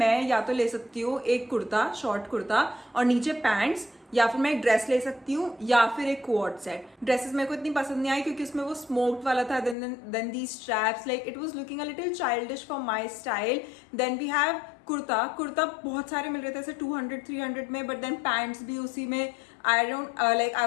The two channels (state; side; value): drops out; right; at 9.8 s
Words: मैं या तो ले सकती हूँ एक कुर्ता, शॉर्ट कुर्ता और नीचे पैंट्स, या फिर मैं एक ड्रेस ले सकती हूँ या फिर एक कोट सेट. ड्रेसेस मेरे को इतनी पसंद नहीं आई क्योंकि उसमें वो स्मोक्ड वाला था. Then the straps, like it was looking a little childish for my style. Then we have kurta बहुत सारे मिल रहे थे ऐसे 200-300 में, बट देन पैंट्स भी उसी में. आई